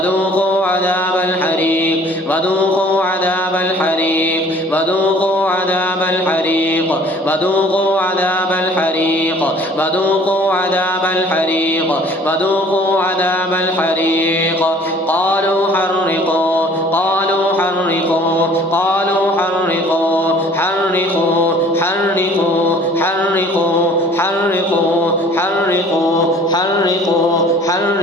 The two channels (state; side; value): normal; both; correlation 0.52